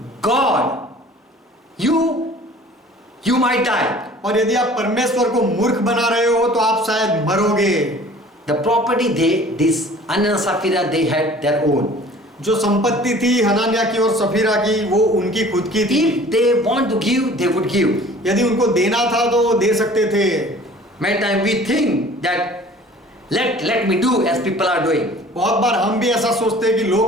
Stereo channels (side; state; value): both; normal; correlation 0.48